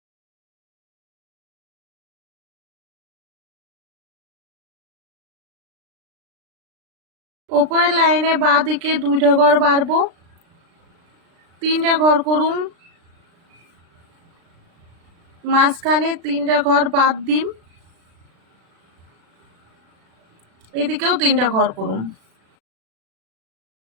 উপরের লাইনে বাঁ দিকে দুইটা ঘর বাড়বো, 3টা ঘর করুম। মাঝখানে 3টা ঘর বাদ দিম, এদিকেও 3টা ঘর করুম।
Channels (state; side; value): late; left; 36 ms